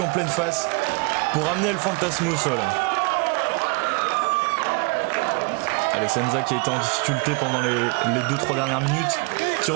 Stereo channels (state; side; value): quieter; left; 29.4 dB